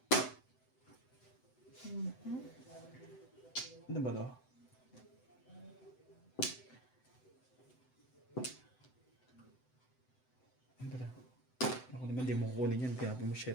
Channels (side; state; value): right; late; 7.9 ms